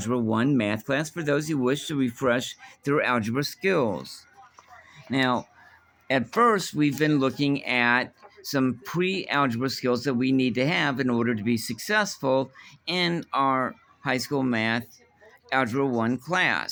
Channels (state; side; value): identical; both; correlation 1.00